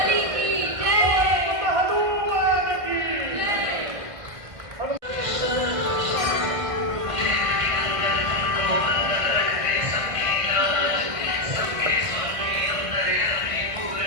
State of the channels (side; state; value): left; late; 1.6 ms